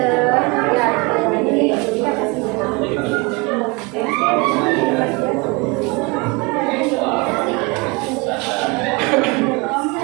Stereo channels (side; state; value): left; quieter; 28.0 dB